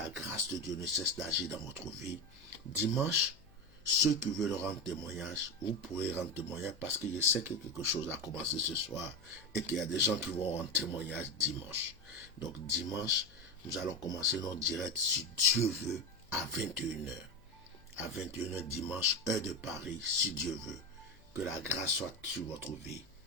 grâce de Dieu ne cesse d'agir dans votre vie. Dimanche, ceux qui veulent rendre témoignage, vous pourrez rendre témoignage parce que je sais que quelque chose a commencé ce soir et qu'il y a des gens qui vont rendre témoignage dimanche. Donc dimanche, nous allons commencer notre direct, si Dieu veut, à 21h. À 21h dimanche, heure de Paris, si Dieu veut. Que la grâce soit sur votre vie.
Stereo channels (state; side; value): noise; left; hum, 26 dB below the sound